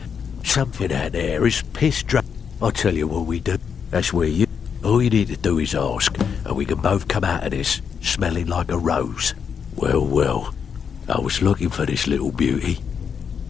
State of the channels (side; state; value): right; quieter; 6.9 dB